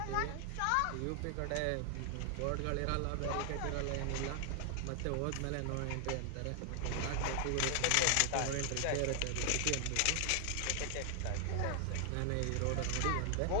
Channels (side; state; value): both; different; correlation 0.00